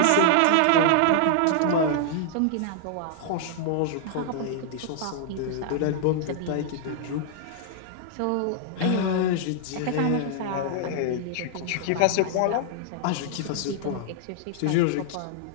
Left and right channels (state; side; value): different; both; correlation 0.00